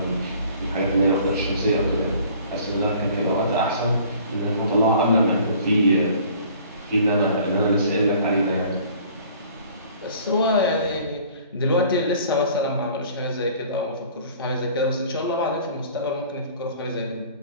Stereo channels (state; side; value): inverted; both; correlation -0.51